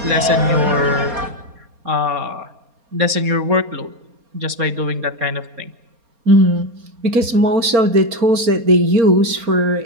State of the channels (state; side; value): late; left; 4.2 ms